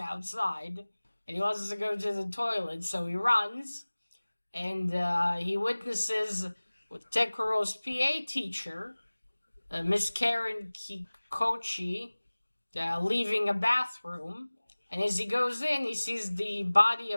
and he wants to go to the toilet, so he runs, and he witnesses with Tekuro's PA teacher, Miss Karen Kikochi, leaving a bathroom, and as he goes in, he sees the body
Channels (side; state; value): both; inverted; correlation -1.00